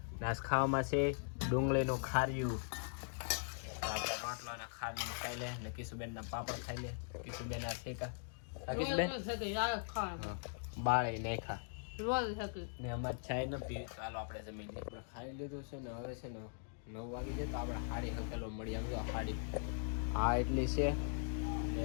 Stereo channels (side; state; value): right; silent; digital silence